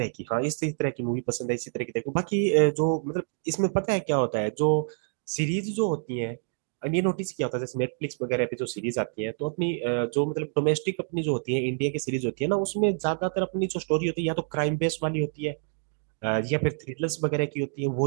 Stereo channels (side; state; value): left; silent; digital silence